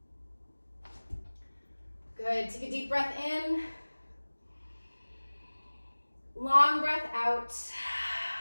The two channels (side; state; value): both; inverted; correlation -1.00